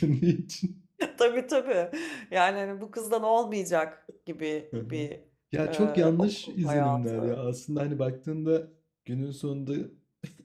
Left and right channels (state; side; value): identical; both; correlation 1.00